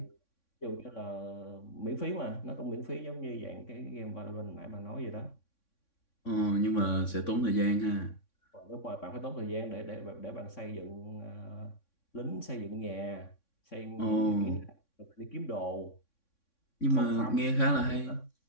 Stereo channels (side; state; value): right; late; 3.6 ms